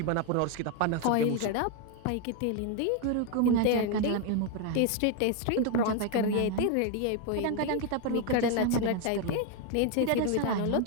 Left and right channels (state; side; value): different; both; correlation 0.01